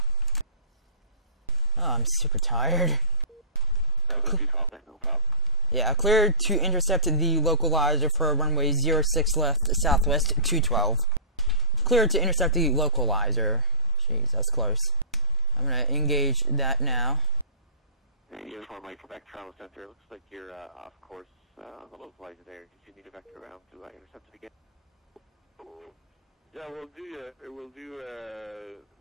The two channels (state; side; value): normal; both; correlation -0.05